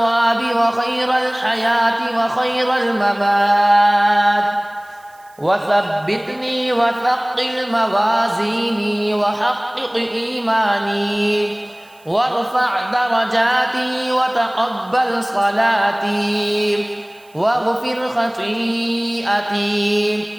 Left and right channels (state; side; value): noise; right; hiss, 30 dB below the sound